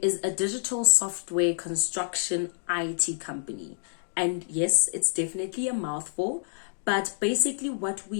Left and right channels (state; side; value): silent; right; digital silence